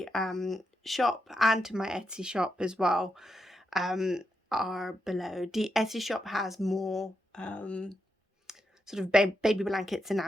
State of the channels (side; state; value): both; normal; correlation 0.84